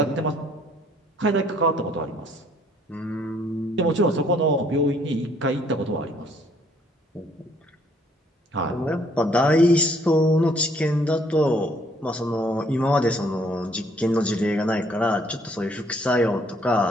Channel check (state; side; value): normal; both; correlation 0.64